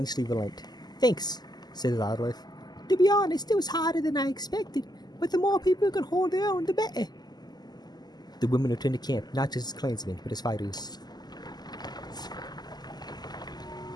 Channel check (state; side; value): late; right; 0.20 ms